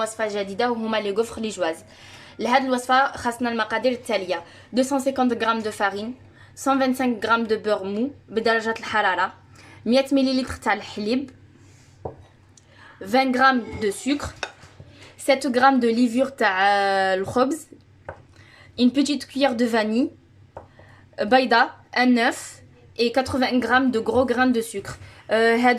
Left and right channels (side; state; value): both; identical; correlation 1.00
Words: جديده وهما لي غوفر لي جواز. لهاد الوصفه خاصنا المقادير التاليه: 250 غرام دو فارين، 125 غرام دو بور مو بدرجه الحراره، 100 مليلتر تاع الحليب، 20 غرام دو سكر، 7 غرام دو ليفور تاع الخبز، une petite cuillère de vanille, بيضه، un œuf et 80 غرام de gros grains de sucre.